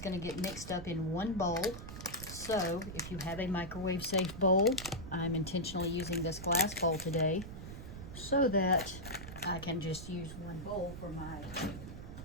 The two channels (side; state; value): right; noise; rumble, 10 dB below the sound